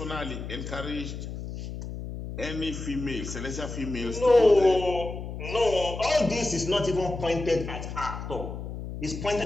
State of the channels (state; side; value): noise; left; hum, 8 dB below the sound